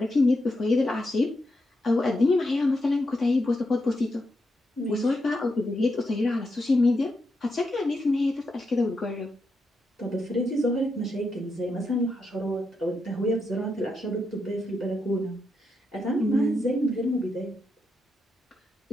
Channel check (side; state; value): both; normal; correlation 0.84